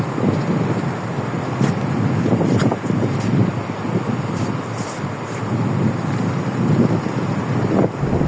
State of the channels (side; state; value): both; identical; correlation 1.00